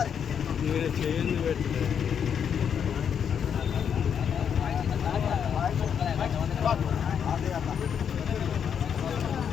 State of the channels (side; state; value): right; quieter; 7.8 dB